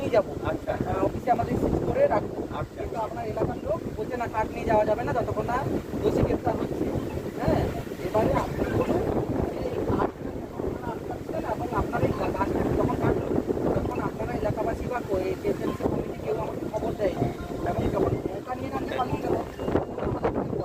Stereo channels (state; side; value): identical; both; correlation 1.00